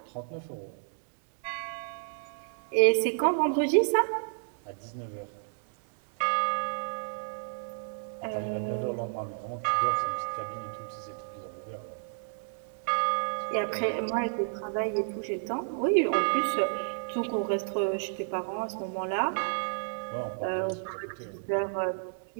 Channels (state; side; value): silent; left; digital silence